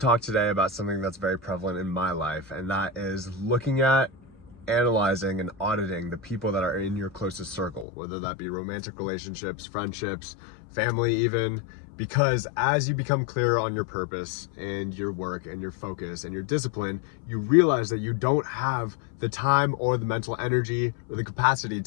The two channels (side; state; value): right; drops out; at 7.9 s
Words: today about something that's very prevalent in my life, and that is looking at, analyzing, and auditing the people that are in your closest circle, whether that be romantic relationships, friendships, family even, because as you become clearer on your purpose and your work and your focus and your discipline, you realize that you don't have the time or the mental energy or the capacity